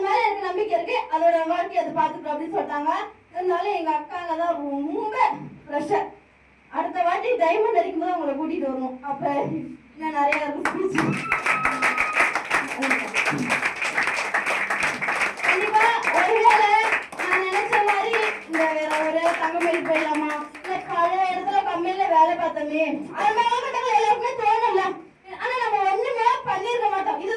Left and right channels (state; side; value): identical; both; correlation 1.00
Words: மேல எனக்கு நம்பிக்கை இருக்கு, அதோட வாழ்க்கை அதை பாத்துக்கோ அப்படின்னு சொல்லிட்டாங்க. இருந்தாலும் எங்க அக்காங்க தான் ரொம்ப ப்ரெஷர். அடுத்த வாட்டி டைமண்ட் அடிக்கும் போது அவங்களை கூட்டிட்டு வரணும். அப்ப இன்னும் நிறைய இருக்கும். கண்டிப்பா ஒருவேளை நான் நினைச்ச மாதிரி இந்த வேற ஒரு தங்கமேல் போயிடலாமா, இல்ல பழைய இடத்துல கம்பெனில வேலை பார்த்தோமே, அது மேலகட்டங்கள் எல்லாருக்குமே தோணல. ஆனா நம்ம ஒண்ணுமே பண்ணிருக்க மாட்டோம்.